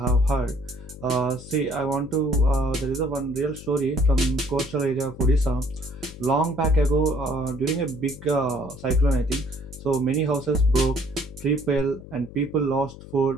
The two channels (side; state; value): left; noise; hum, 16 dB below the sound